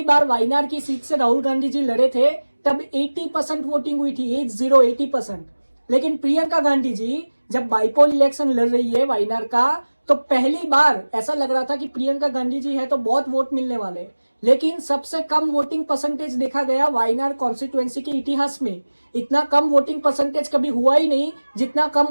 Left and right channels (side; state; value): both; inverted; correlation -1.00